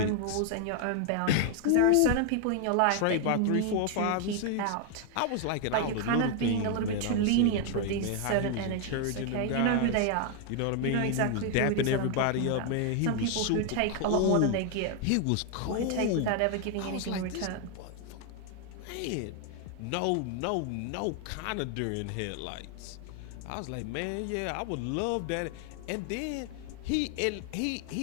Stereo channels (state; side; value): different; both; correlation 0.00